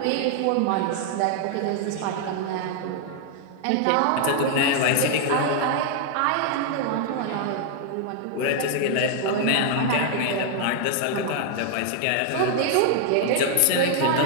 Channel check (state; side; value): different; both; correlation 0.00